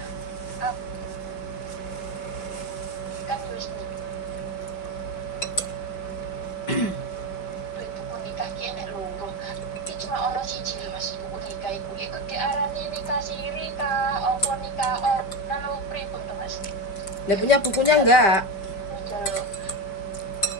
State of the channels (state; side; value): late; right; 5.1 ms